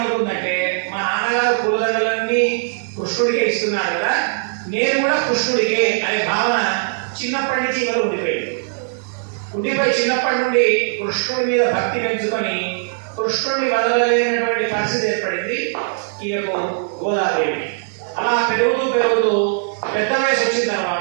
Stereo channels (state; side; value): silent; left; digital silence